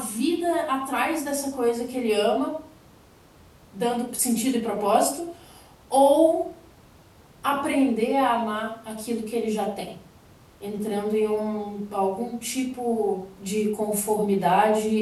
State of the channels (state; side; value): identical; both; correlation 1.00